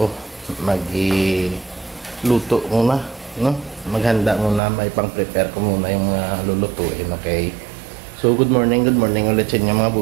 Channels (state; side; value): drops out; left; at 4.6 s